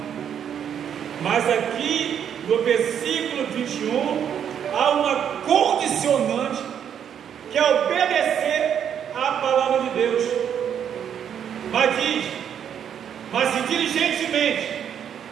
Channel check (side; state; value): left; quieter; 8.7 dB